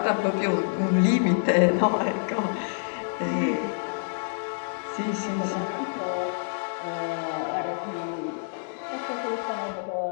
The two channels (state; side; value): silent; right; digital silence